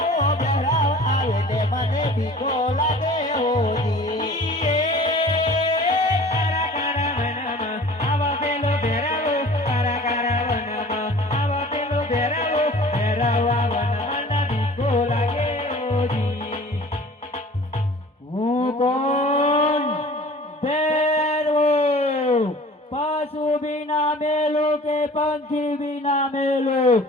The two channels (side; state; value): both; normal; correlation 0.46